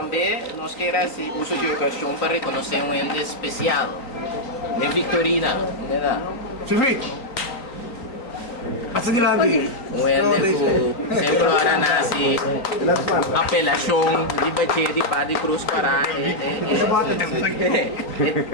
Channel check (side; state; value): right; late; 3.9 ms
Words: nós queremos uso de ocasião para reconhecer um ente especial. Nem Victorina, não é? Silvio! Passa di là lì! Um ente que sempre ora nasce apelação de bater de pá de cruz para